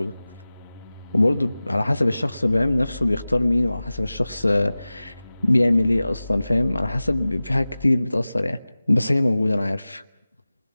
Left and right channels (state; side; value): inverted; both; correlation -0.97